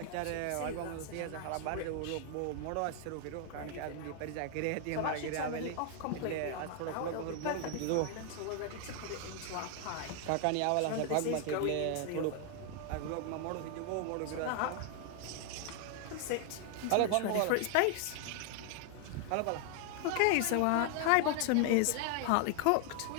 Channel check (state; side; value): different; both; correlation 0.00